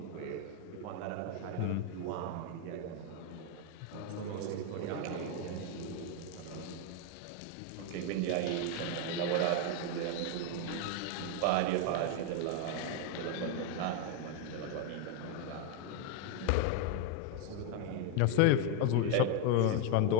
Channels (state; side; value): different; both; correlation 0.01